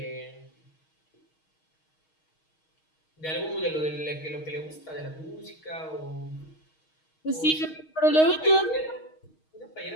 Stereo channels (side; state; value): right; late; 6.4 ms